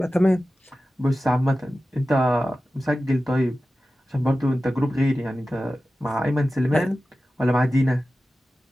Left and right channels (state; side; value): normal; both; correlation 0.94